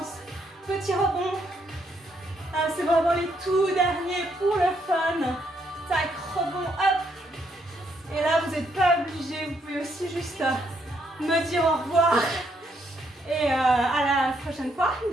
petits rebonds. Ah, c'est vraiment les tout derniers pour le fun. Tac, rebond, hop. Et là, vous n'êtes pas obligé, vous pouvez aussi juste me dire au revoir. Et à la prochaine fois.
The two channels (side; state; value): both; normal; correlation 0.74